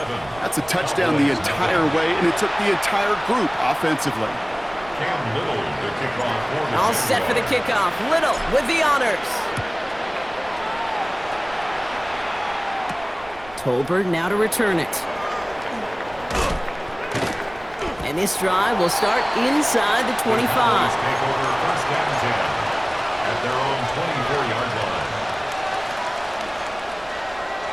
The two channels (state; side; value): noise; right; rumble, 21 dB below the sound